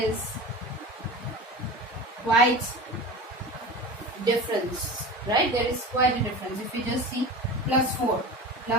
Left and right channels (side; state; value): both; normal; correlation 0.32